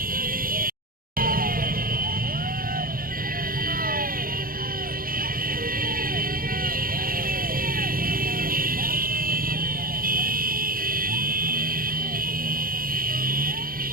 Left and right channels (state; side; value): late; left; 0.42 ms